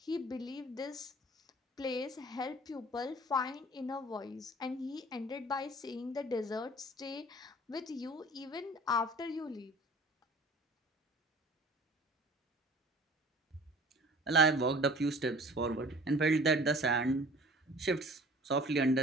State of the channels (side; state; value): both; normal; correlation 0.47